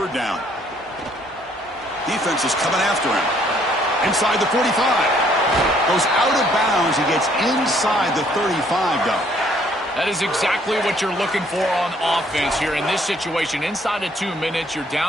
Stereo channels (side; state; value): both; normal; correlation 0.64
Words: down. Defense is coming after him. Inside the 45. Goes out of bounds. He gets inside the 35, though. That is exactly what you're looking for on offense here in this situation. Inside of 2 minutes, you're